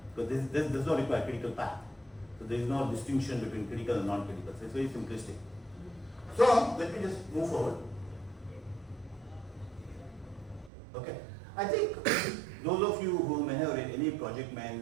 because this does not require critical path. So there is no distinction between critical and non-critical. So it's very simplistic. So let me just move forward. Okay. I think those of you who may have read any project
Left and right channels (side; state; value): left; drops out; at 10.7 s